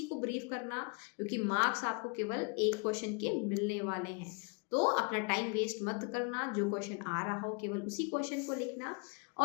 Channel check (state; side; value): quieter; right; 33.5 dB